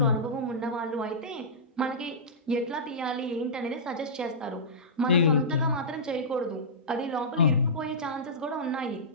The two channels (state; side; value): normal; both; correlation -0.16